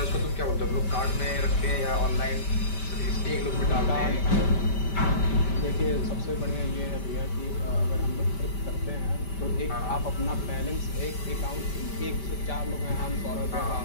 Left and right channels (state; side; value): late; right; 5.1 ms